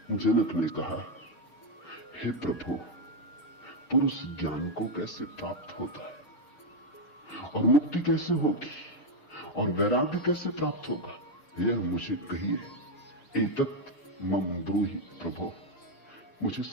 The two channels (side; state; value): right; late; 6.7 ms